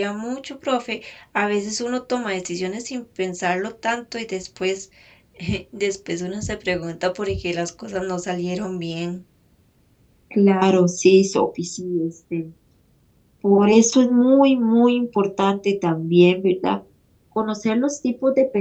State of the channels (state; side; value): identical; both; correlation 1.00